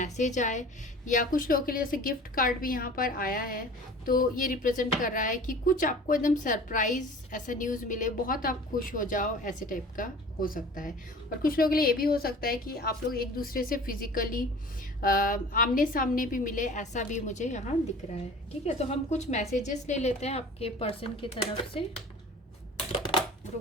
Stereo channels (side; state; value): both; normal; correlation 0.43